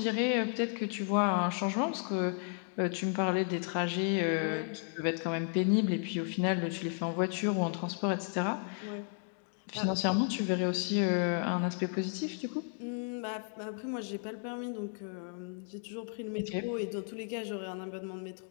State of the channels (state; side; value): silent; right; 55 dB below the other